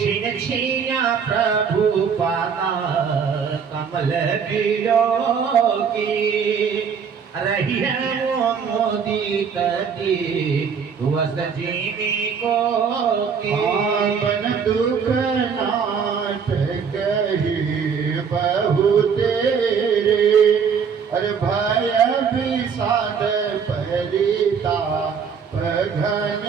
छिना प्रभु पाता कमल बिलो की रही है वो मोदी की वस्त जीवी को की आपन दुख नाथ कही बहु तेरे अरे भय विषाद परिता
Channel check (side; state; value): left; quieter; 6.5 dB